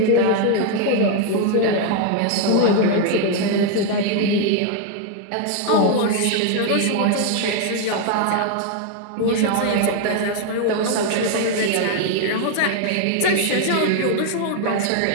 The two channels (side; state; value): both; different; correlation 0.00